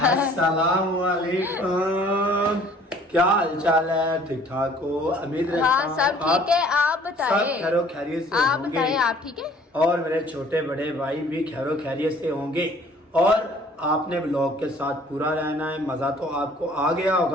अस्सलाम वालेकुम। क्या हालचाल है? ठीक ठाक हो? उम्मीद रखता हाँ हूँ सब ठीक है, आप सब बताएं। खैरो खैरियत से आप होंगे। बताएं, आप ठीक है? और मेरे छोटे बड़े भाई भी खैरो खैरियत से होंगे। और आपने ब्लॉग के साथ पूरा रहना है। मजा तो आपको आ गया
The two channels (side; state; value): both; normal; correlation 0.55